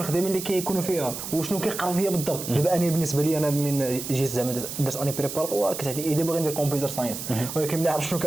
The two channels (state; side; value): noise; right; hiss, 8 dB below the sound